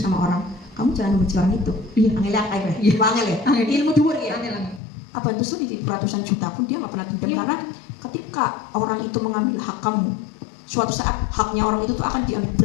orang, kamu jangan membenci orang itu. Iya. Angel ya, kayak Iya. angel ya. Angel. Ilmu dhuwur ya. Angel. Apa itu tuh di ratusan juta pun dia nggak pernah dendam, Iya. karena ketika orang itu mengambil hak kamu, suatu saat haknya orang itu tuh akan diambil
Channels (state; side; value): drops out; right; at 4.8 s